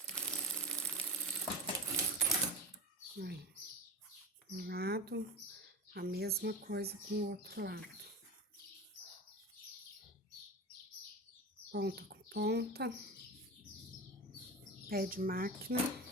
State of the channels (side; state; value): both; normal; correlation 0.28